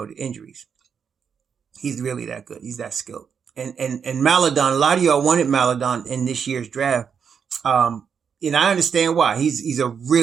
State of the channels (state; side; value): quieter; left; 6.8 dB